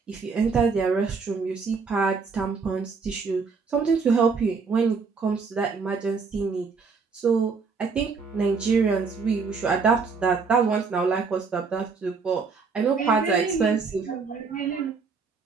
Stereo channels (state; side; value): quieter; left; 4.9 dB